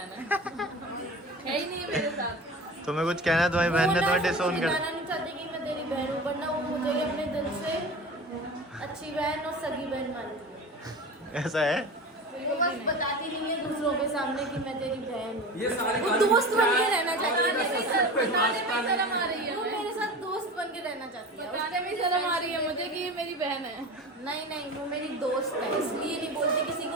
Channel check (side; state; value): both; normal; correlation 0.33